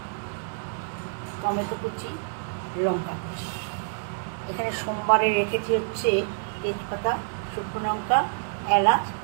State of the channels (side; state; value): left; silent; digital silence